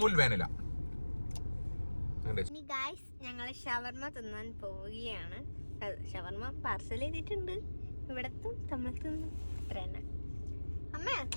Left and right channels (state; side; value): inverted; both; correlation -1.00